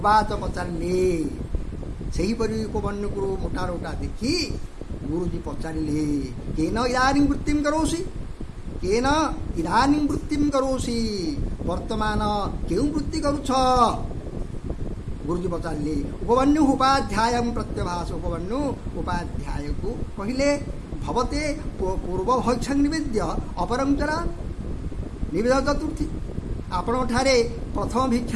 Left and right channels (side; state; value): both; identical; correlation 1.00